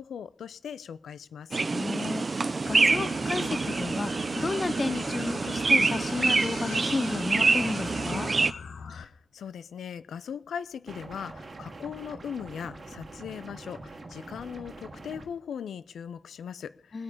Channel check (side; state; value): both; normal; correlation 0.92